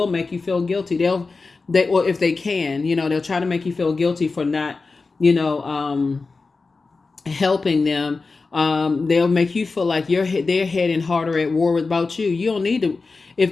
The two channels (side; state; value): right; quieter; 4.0 dB